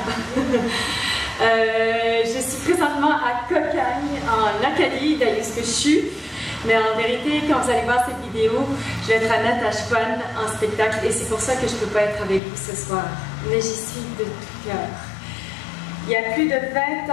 Je suis présentement à Cocagne, en Acadie, d'ailleurs ce que je suis. Mais en vérité, quand vous allez voir cette vidéo, je vais être à Natashquan en spectacle et c'est pour ça que je ne peux pas être avec vous ce soir. Mais j'y suis de tout cœur. Il y a plus de 20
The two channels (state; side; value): drops out; right; at 12.4 s